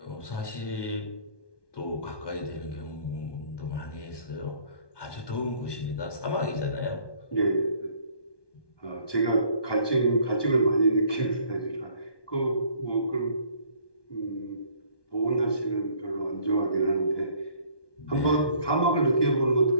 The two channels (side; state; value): right; late; 1.2 ms